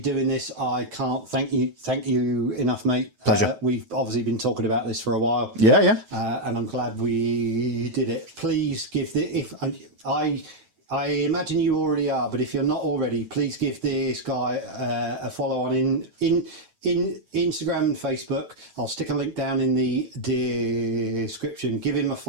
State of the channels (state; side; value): late; left; 9.2 ms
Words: this. I can't thank you enough, mate. Pleasure. We've obviously been talking about this for a while. Yeah. And I'm glad we did it. Please give I imagine you already are, but if you're not already, please give this guy a follow on in Instagram and Facebook. I'll stick a link down in the description. Give him a